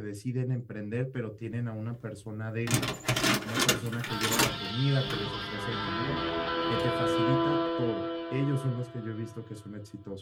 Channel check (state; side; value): identical; both; correlation 1.00